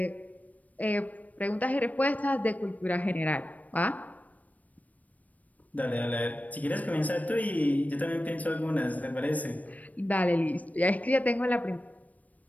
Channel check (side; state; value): right; late; 0.073 ms